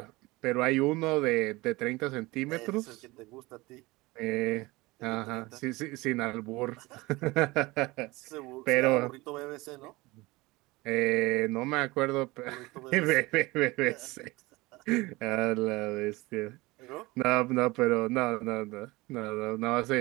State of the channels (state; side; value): quieter; left; 21.8 dB